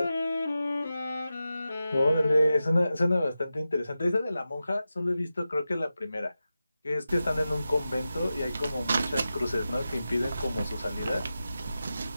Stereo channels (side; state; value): both; inverted; correlation -0.92